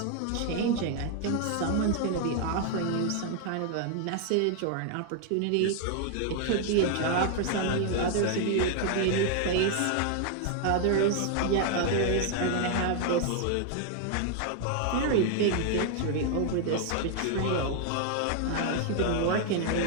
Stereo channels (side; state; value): both; different; correlation 0.00